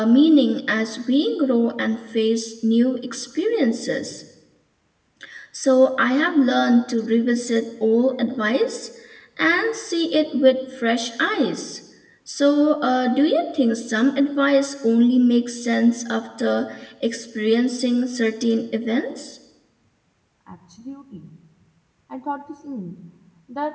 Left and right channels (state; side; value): identical; both; correlation 1.00